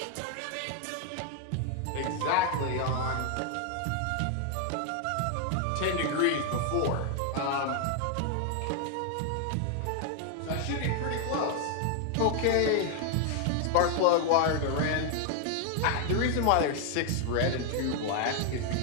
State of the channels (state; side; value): different; both; correlation 0.00